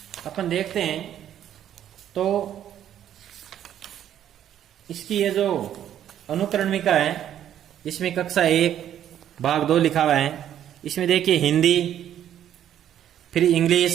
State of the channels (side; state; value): left; quieter; 10.7 dB